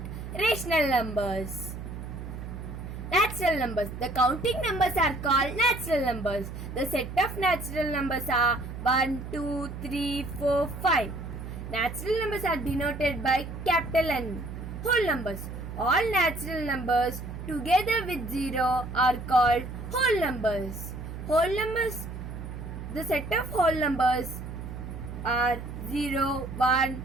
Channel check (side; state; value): right; noise; hum, 9 dB below the sound